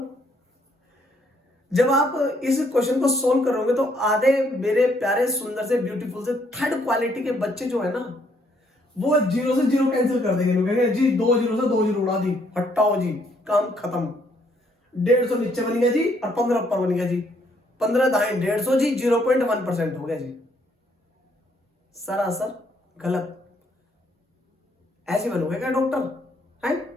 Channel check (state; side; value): normal; both; correlation 0.69